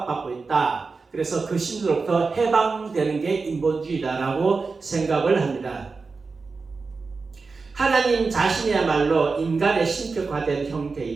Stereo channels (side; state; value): left; quieter; 4.4 dB